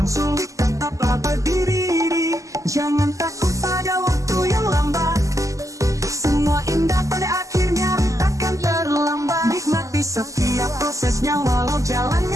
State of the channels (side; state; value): left; late; 0.16 ms